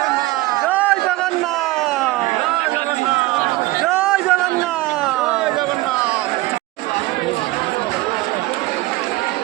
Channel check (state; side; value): quieter; left; 19.4 dB